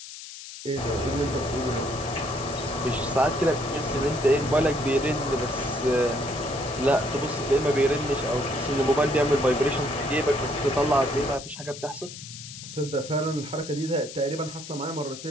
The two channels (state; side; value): noise; left; hiss, 13 dB below the sound